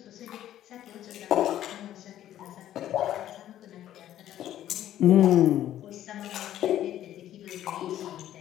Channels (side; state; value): right; quieter; 12.2 dB